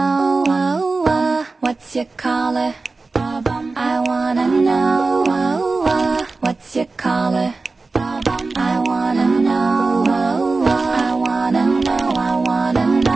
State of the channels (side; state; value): left; quieter; 3.7 dB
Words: What's your color? I wanna know. What's your color? I wanna know. I wanna know. I wanna